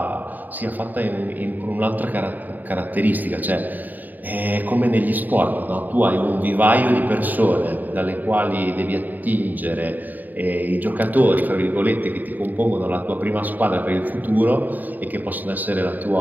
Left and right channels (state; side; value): late; left; 0.086 ms